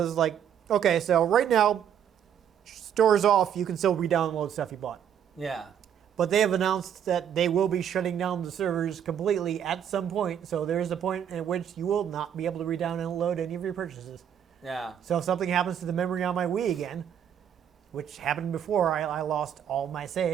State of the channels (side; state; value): left; quieter; 9.0 dB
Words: is like, okay, so right now, store's off, you can still re-download stuff you bought. Yeah. But they have announced that they will be shutting down the servers completely at some point. So there is a point at which you will not be able to re-download any of your purchases. Yeah. So if something happens to the memory on my Wii again, which happened before, I lost all my